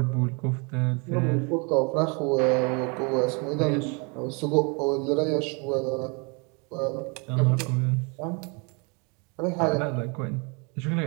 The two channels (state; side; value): quieter; left; 32.4 dB